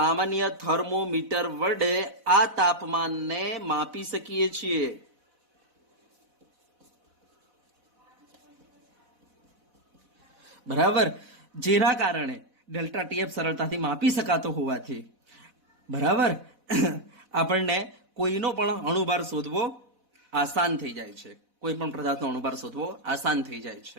થર્મોમીટર વડે આ તાપમાનને માપી શકીએ છીએ. બરાબર, જેના કારણે ડેલ્ટા TF સરળતાથી માપી શકાતો હોવાથી બરાબર આપણને કોઈનો પણ અણુભાર શોધવો આસાન થઈ જાય છે. કોઈ પણ પદાર્થનો અણુભાર શોધવો આસાન થઈ જાય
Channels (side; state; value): left; late; 4.1 ms